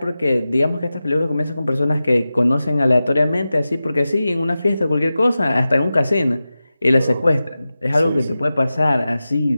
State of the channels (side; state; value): both; inverted; correlation -0.94